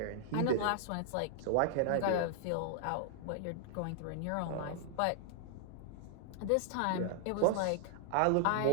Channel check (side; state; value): both; different; correlation 0.00